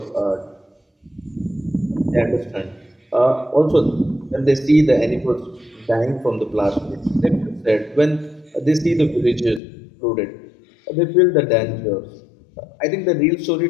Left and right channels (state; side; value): drops out; right; at 9.6 s